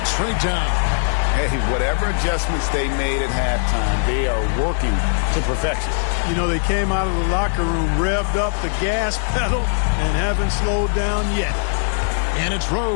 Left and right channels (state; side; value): silent; right; digital silence